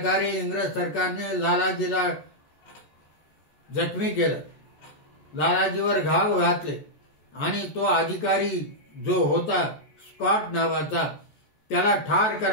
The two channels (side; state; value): right; late; 14 ms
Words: इंग्रज सरकारने लालाजीला जखमी केलं, लालाजीवर घाव घातले आणि तो अधिकारी जो होता स्कॉट नावाचा त्याला ठार